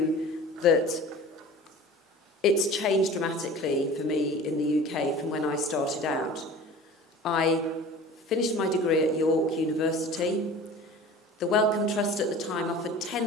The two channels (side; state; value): both; normal; correlation 0.40